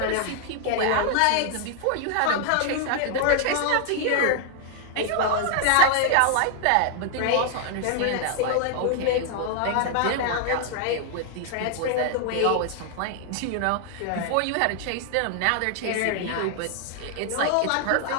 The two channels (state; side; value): different; both; correlation 0.00